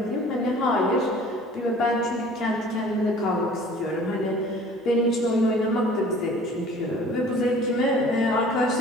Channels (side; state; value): both; normal; correlation 0.48